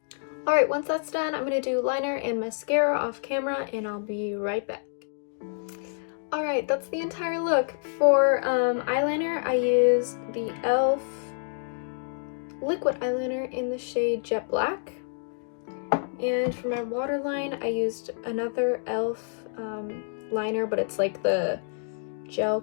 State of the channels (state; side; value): silent; right; digital silence